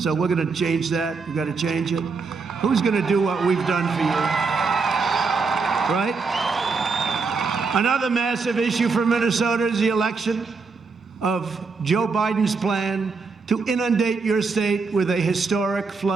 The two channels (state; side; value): quieter; left; 4.6 dB